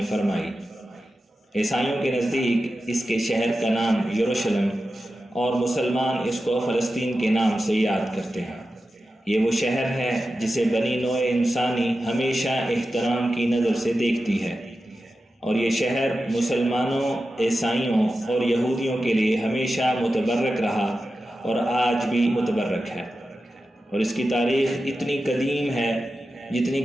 فرمائی۔ عیسائیوں کے نزدیک اس کے شہر کا نام یروشلم اور مسلمان اس کو فلسطین کے نام سے یاد کرتے ہیں۔ یہ وہ شہر ہے جسے بنی نوع انسانی ہمیشہ احترام کی نظر سے دیکھتی ہے، اور یہ شہر مسلمانوں، عیسائیوں اور یہودیوں کے لیے ہمیشہ متبرک رہا اور آج بھی متبرک ہے، اور اس کی تاریخ اتنی قدیم ہے جتنی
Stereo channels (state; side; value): normal; both; correlation 0.92